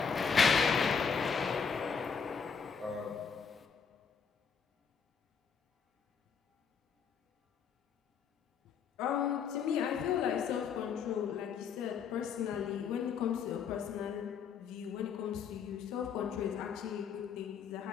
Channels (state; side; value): quieter; right; 6.4 dB